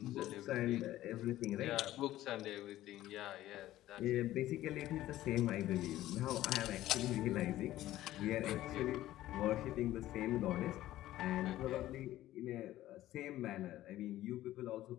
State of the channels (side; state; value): right; quieter; 14.6 dB